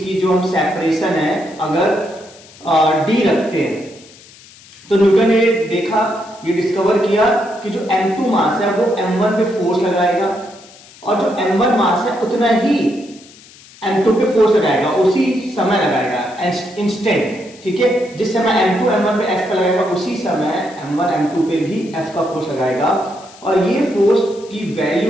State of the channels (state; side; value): noise; left; hiss, 23 dB below the sound